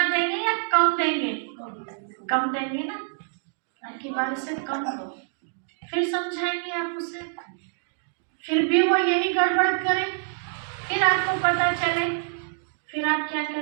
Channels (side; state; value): left; silent; digital silence